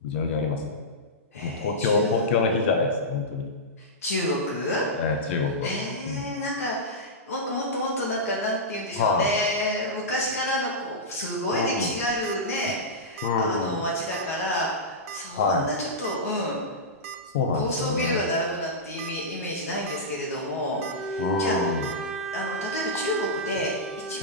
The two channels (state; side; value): normal; both; correlation -0.13